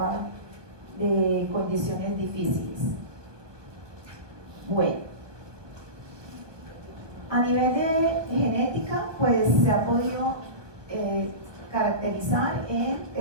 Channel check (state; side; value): late; left; 1.1 ms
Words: de condiciones difíciles. Bueno, a nivel de genética, pues se ha podido caracterizar en